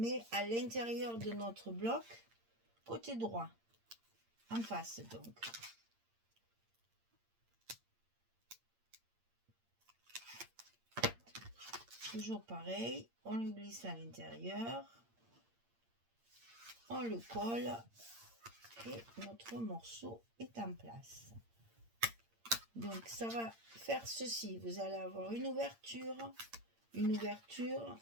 à l'intérieur de notre bloc côté droit, en face donc. Toujours pareil, on le glisse à l'intérieur, on le colle et notre morceau est en place. Donc ça va faire ceci, vous allez avoir une ouverture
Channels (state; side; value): late; left; 8.7 ms